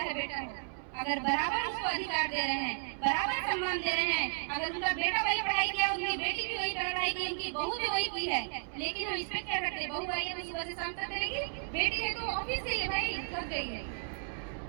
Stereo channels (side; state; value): left; silent; 55 dB below the other